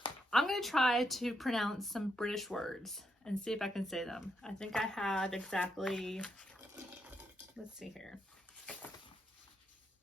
I'm gonna try to pronounce some British words and see if I can say them. I think I had exactly, let's see here.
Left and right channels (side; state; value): both; normal; correlation 0.81